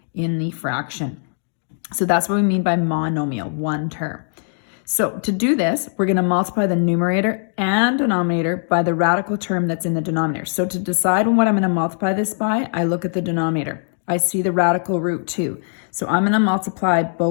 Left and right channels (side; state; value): right; silent; digital silence